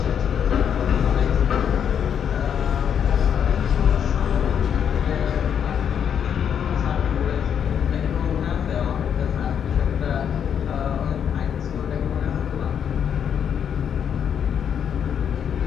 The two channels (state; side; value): quieter; right; 8.2 dB